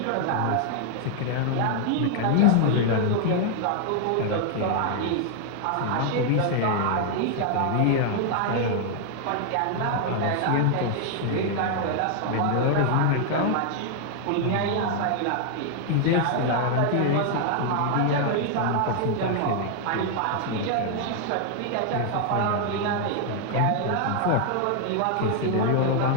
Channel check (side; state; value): both; different; correlation 0.00